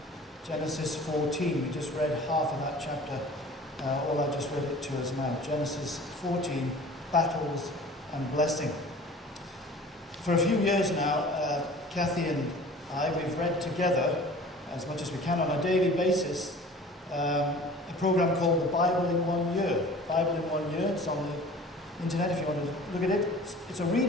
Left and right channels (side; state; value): both; normal; correlation 0.44